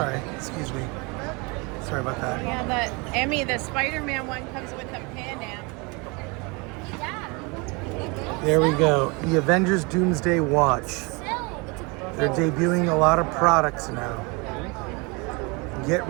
excuse me. Sorry about that. Yeah, Emmy, the Spider-Man one comes with a Pan Am. There we go. The Avengers Doomsday Watch. They're debuting a lot of products now. Get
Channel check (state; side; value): quieter; left; 28.7 dB